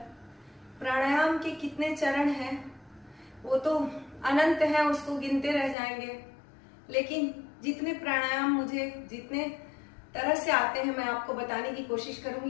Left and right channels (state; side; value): drops out; right; at 5.8 s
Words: प्राणायाम के कितने चरण हैं वो तो अनंत है, उसको गिनते रह जाएंगे। लेकिन जितने प्राणायाम मुझे जितने तरह से आते हैं मैं आपको बताने की कोशिश